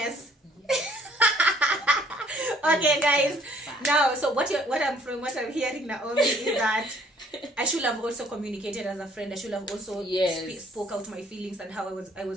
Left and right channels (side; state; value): both; normal; correlation 0.60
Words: Okay, guys. Now, so what I'm hearing, Naomi, is that I should have also communicated as a friend. I should have also Yes. spoke out my feelings and how I